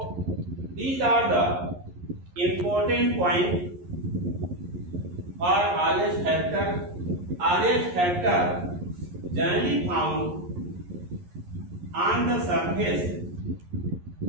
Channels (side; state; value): left; late; 11 ms